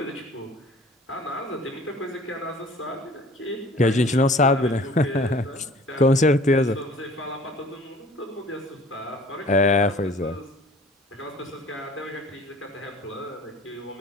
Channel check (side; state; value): both; normal; correlation 0.49